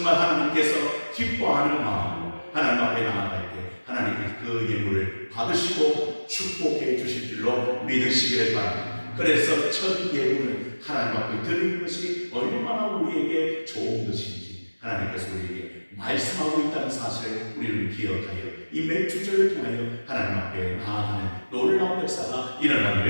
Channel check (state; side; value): inverted; both; correlation -1.00